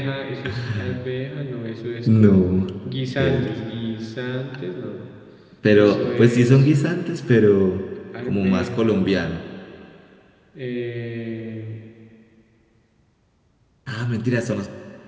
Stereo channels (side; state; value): both; identical; correlation 1.00